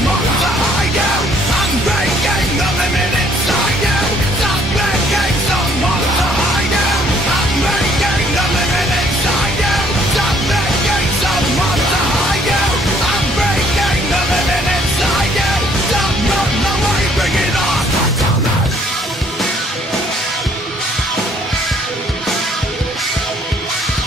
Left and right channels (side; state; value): both; normal; correlation 0.63